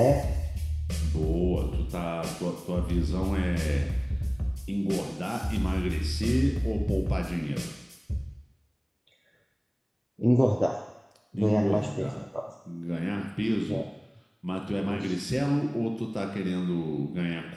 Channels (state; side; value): identical; both; correlation 1.00